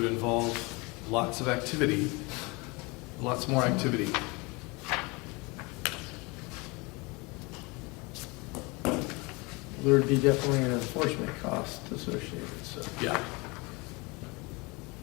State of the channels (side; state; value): right; quieter; 26.7 dB